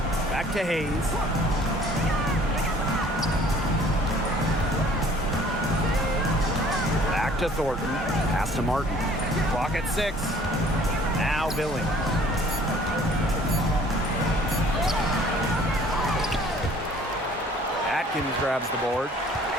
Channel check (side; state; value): both; normal; correlation 0.54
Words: Back to Hayes. Back to Thornton. Pass to Martin. Clock at 6. Now Billings. Atkins grabs the board.